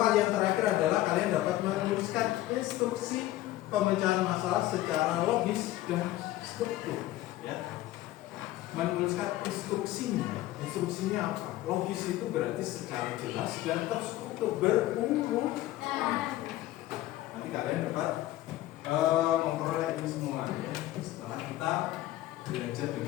yang terakhir adalah kalian dapat menuliskan instruksi pemecahan masalah secara logis dan struktur. Ya. Menuliskan instruksinya. Instruksinya apa? Logis itu berarti secara jelas dan terstruktur berurut. Nanti kalian dapat memperoleh ini semua ya, setelah kita belajar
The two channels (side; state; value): right; quieter; 15.4 dB